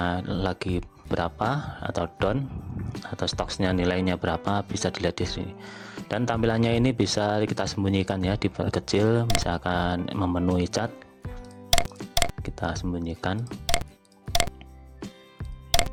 lagi berapa atau down, atau stocksnya nilainya berapa, bisa dilihat di sini. Dan tampilannya ini bisa kita sembunyikan ya, diperkecil, misalkan memenuhi cat, kita sembunyikan.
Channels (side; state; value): both; identical; correlation 1.00